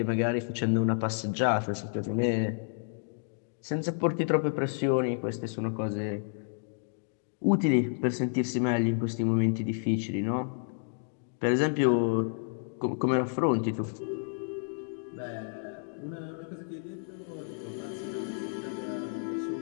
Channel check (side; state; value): right; silent; digital silence